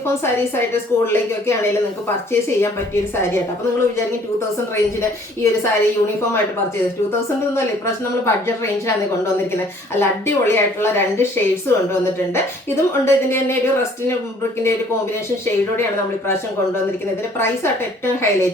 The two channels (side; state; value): both; normal; correlation 0.57